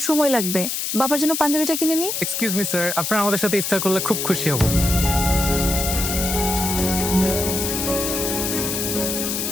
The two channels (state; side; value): noise; left; hiss, 2 dB below the sound